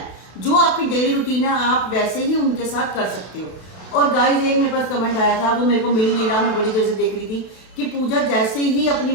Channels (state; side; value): late; right; 32 ms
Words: जो आपकी डेली रूटीन है आप वैसे ही उनके साथ कर सकते हो। और गाइस एक मेरे पास कमेंट आया था, वो मेरे को मिल नहीं रहा, मैं बड़ी देर से देख रही थी कि पूजा जैसे ही अपनी